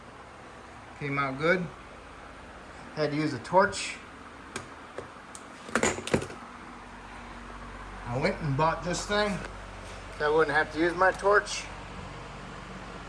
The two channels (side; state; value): both; identical; correlation 1.00